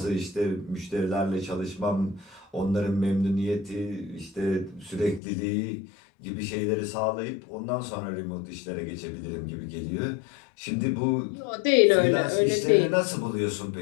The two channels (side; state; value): right; drops out; at 5.2 s